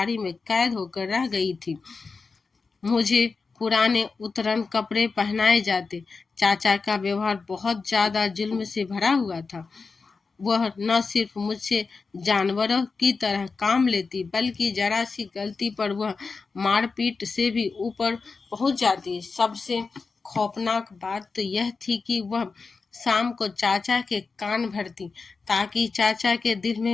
में कैद होकर रह गई थी। मुझे पुराने उतरन कपड़े पहनाए जाते। चाचा का व्यवहार बहुत ज्यादा जुल्म से भरा हुआ था। वह न सिर्फ मुझसे जानवरों की तरह काम लेती बल्कि जरा सी गलती पर वह मारपीट से भी ऊपर पहुंच जाती। सबसे खौफनाक बात तो यह थी कि वह शाम को चाचा के कान भरती ताकि चाचा के दिल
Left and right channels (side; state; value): right; quieter; 4.5 dB